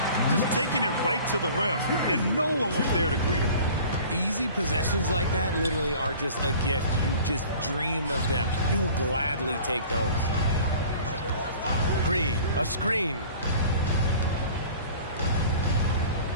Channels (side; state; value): both; inverted; correlation -0.45